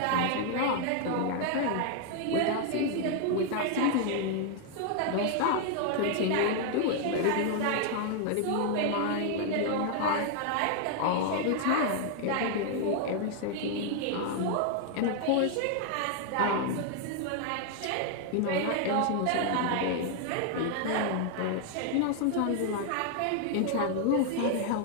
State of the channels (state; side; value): different; both; correlation 0.00